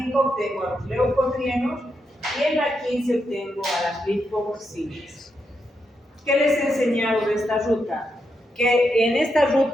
obtengo a los leucotrienos y en la 15 obtengo a las lipoxinas. ¿Qué les he enseñado de esta ruta? Que en esta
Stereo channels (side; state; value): both; normal; correlation 0.83